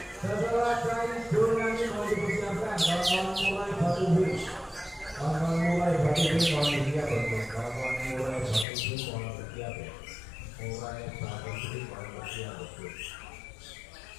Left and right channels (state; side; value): drops out; right; at 8.7 s